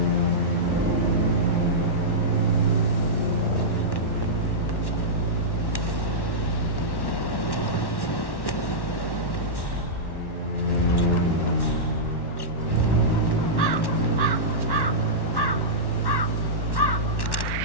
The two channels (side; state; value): right; late; 1.1 ms